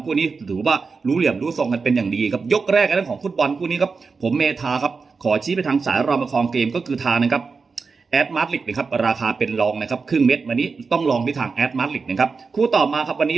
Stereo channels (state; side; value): quieter; left; 4.8 dB